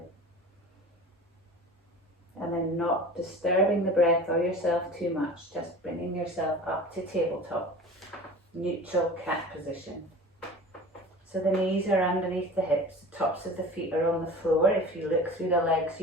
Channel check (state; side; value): normal; both; correlation 0.38